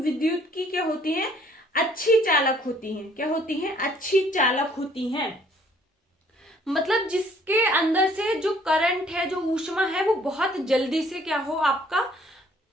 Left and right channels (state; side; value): normal; both; correlation 0.60